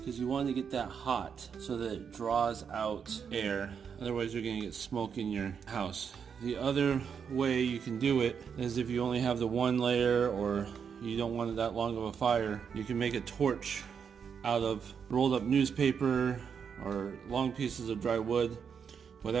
you want to get that hot so that it draws out air. Otherwise you're going to get smoke in your house. The other way you can do it is if you only have the one layer, or you don't want it that long of a fire, you can make a torch out of rolled up newspaper or long pieces of dry wood,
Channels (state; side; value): quieter; left; 6.9 dB